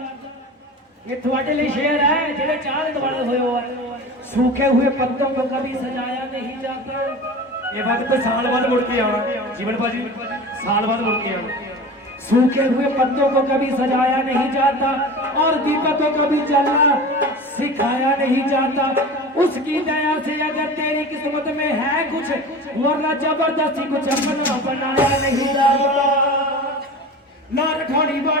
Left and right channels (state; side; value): normal; both; correlation 0.34